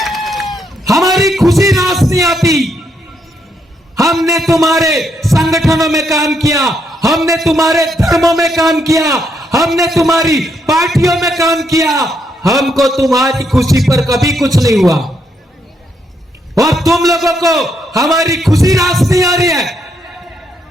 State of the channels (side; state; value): both; normal; correlation 0.76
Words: हमारी खुशी रास नहीं आती। हमने तुम्हारे संगठनों में काम किया, हमने तुम्हारे धर्मों में काम किया, हमने तुम्हारी पार्टियों में काम किया, हमको तुम्हारी खुशी पर कभी कुछ नहीं हुआ। और तुम लोगों को हमारी खुशी रास नहीं आ रही है।